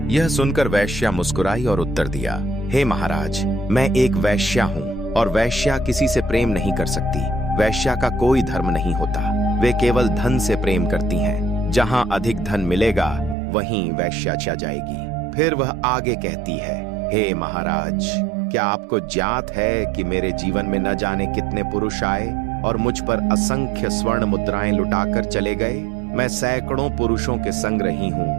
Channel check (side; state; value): left; drops out; at 13.4 s